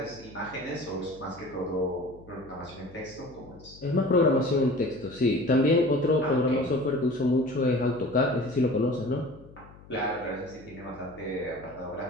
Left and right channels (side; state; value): left; noise; hum, 21 dB below the sound